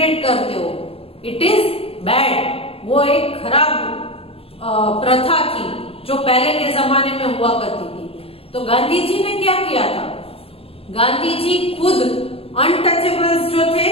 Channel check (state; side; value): late; right; 0.27 ms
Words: करते हो? It is bad. वो एक खराब प्रथा थी जो पहले के जमाने में हुआ करती थी। तो गांधी जी ने क्या किया था? गांधी जी खुद अनटचेबल्स जो थे